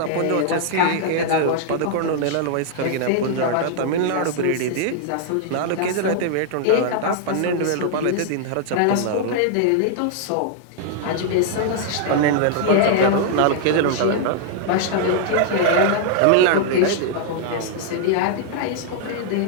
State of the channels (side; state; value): both; different; correlation -0.01